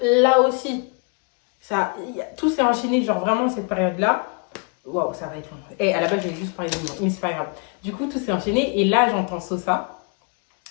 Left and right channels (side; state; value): right; quieter; 35.9 dB